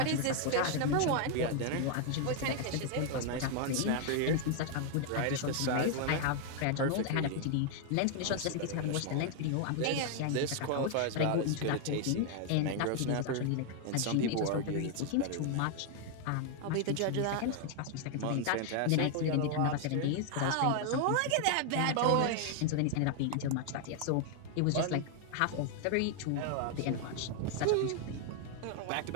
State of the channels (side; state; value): both; different; correlation 0.00